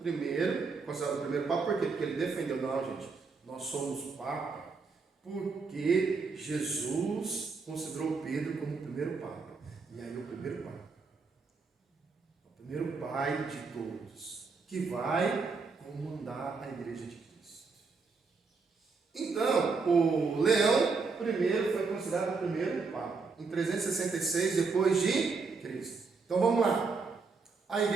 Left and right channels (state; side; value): quieter; left; 4.6 dB